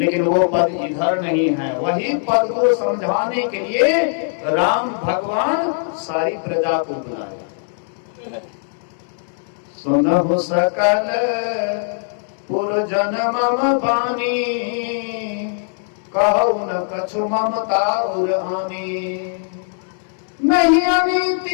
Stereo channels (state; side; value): silent; right; 66 dB below the other